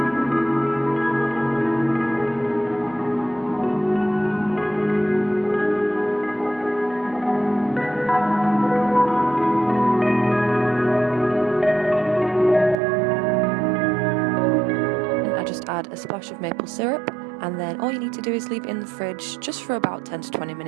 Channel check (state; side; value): drops out; left; at 12.8 s